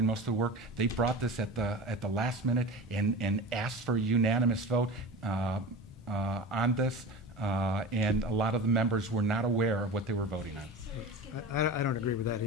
most of the work. They brought this at the last minute and asked for a unanimous vote on this, and a lot of the members were not aware of what they were voting on. I don't agree with that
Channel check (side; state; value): both; normal; correlation 0.31